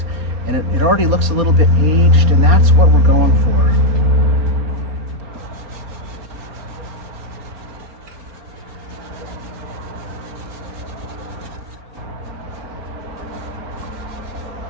And it already looks a little bit aged, and that's what we're going for.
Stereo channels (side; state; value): left; late; 4.3 ms